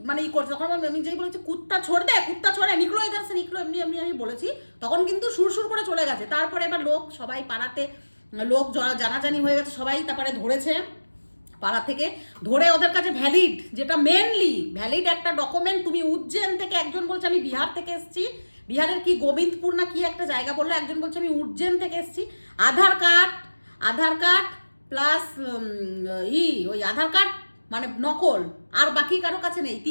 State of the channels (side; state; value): both; inverted; correlation -1.00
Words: মানে করছে। তখন আমি যেই বলেছি কুত্তা ছোড় দে, কুত্তা ছোড়ে, নিকলো ইধার সে নিকলো, এমনি এমনি আমি বলেছি, তখন কিন্তু সুরসুর করে চলে গেছে। তারপরে এবার লোক সবাই পাড়াতে লোক জানাজানি হয়ে গেছে, সবাই তারপরে ধরেছে পাড়া থেকে, ধরে ওদের কাছে ভ্যালিড, যেটা মেনলি ভ্যালিড একটা ডকুমেন্ট। তুমি উজ্জৈন থেকে, একজন বলছে আমি বিহার থেকে এসেছি, বিহারের কি গোবিন্দপুর না কি একটা জায়গা বললো, একজন বলছে আমি উজ্জৈন থেকে এসেছি। আধার কার্ড প্লাস ওই আধার কার্ড মানে নকল, আর বাকি কারো কাছে নেই।